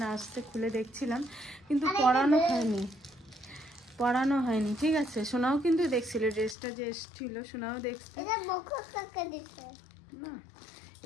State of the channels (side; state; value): right; drops out; at 6.6 s